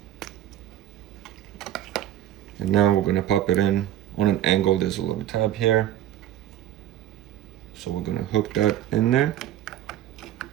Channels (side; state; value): left; quieter; 12.3 dB